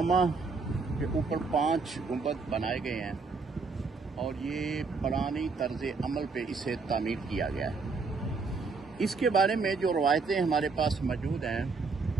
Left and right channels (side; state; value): left; quieter; 4.4 dB